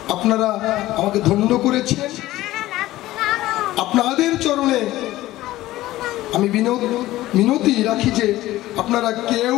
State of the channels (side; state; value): right; quieter; 16.2 dB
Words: আপনারা আমাকে ধন্য করেছেন, আপনাদের চরণে আমি মিনতি রাখি যে আপনারা কেউ